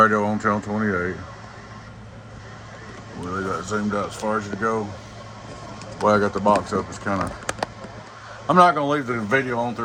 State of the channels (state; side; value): identical; both; correlation 1.00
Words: on channel 28. Well, they got zoomed out as far as it go. The way I got the box up is kind of. I'm not gonna leave the video on